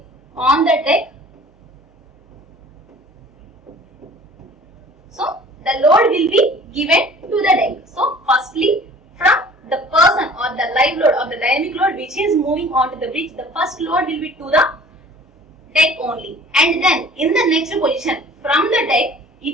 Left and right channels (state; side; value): normal; both; correlation 0.47